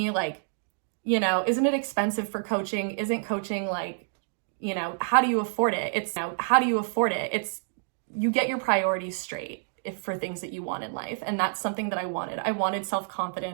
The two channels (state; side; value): silent; left; digital silence